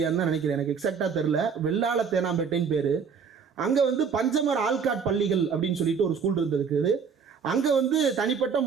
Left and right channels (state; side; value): quieter; left; 6.2 dB